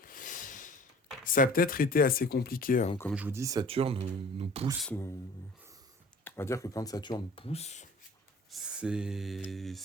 Ça a peut-être été assez compliqué, hein. Comme je vous dis, Saturne nous pousse. On va dire que quand Saturne pousse, c'est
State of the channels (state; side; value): normal; both; correlation 0.46